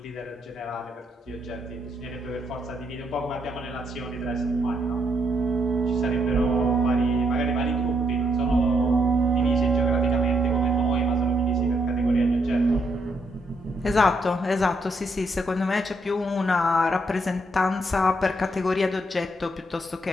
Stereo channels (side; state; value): both; normal; correlation 0.76